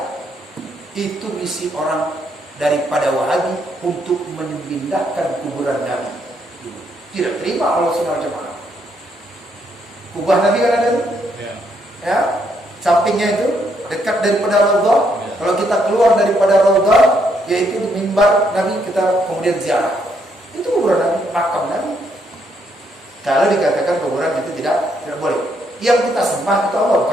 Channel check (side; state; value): both; normal; correlation 0.74